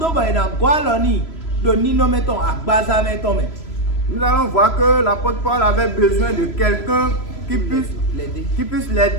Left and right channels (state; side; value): late; right; 3.0 ms